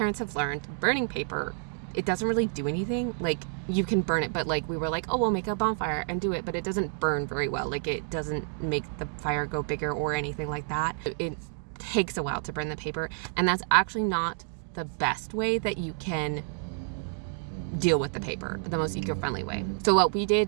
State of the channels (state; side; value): silent; left; 58 dB below the other